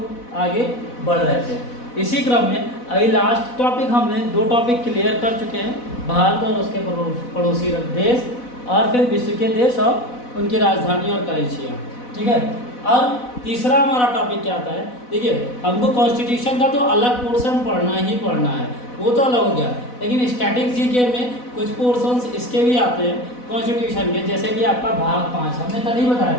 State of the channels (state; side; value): late; right; 4.1 ms